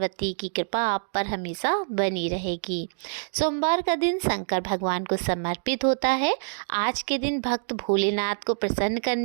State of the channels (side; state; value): left; silent; digital silence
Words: की कृपा आप पर हमेशा बनी रहेगी। सोमवार का दिन शंकर भगवान को समर्पित होता है। आज के दिन भक्त भोलेनाथ को प्रसन्न